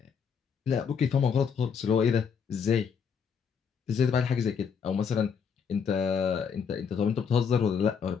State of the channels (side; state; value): right; quieter; 6.6 dB